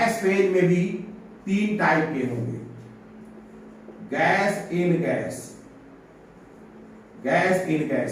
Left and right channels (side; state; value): both; identical; correlation 1.00